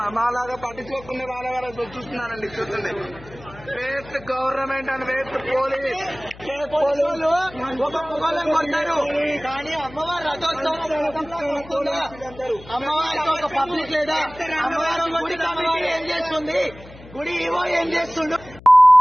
మాలాగా పట్టించుకోకుండా వాళ్ళ చూస్తున్నారండి. చూడండి waste government and waste police. ఒక పొగలను కొట్టారు కానీ అమ్మవారు రథోత్సవం అమ్మవారికి ఒక పబ్లిక్ లేదా? అమ్మవారు అమ్మవారు ఏం చేస్తుంది? గుడి ఏవో ఏం చేస్తుండు?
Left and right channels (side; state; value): left; noise; hum, 19 dB below the sound